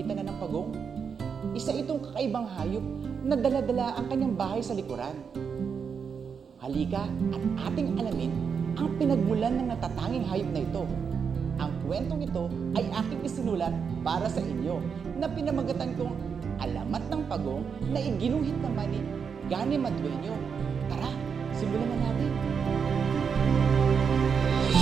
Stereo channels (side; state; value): left; quieter; 6.4 dB